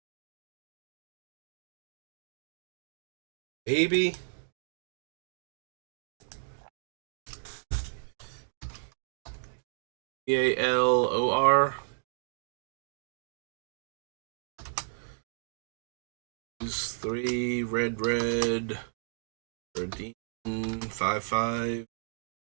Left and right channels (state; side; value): silent; left; digital silence